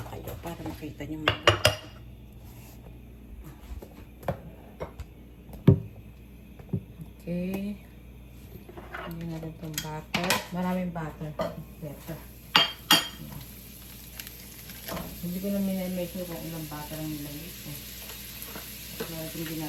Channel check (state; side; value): identical; both; correlation 1.00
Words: kayo para makita niyo mga. Okay. Hindi natin itong butter. Maraming butter. Better. Hindi ko na minimake kung ilang butter ang nilagay ko. Kaya hindi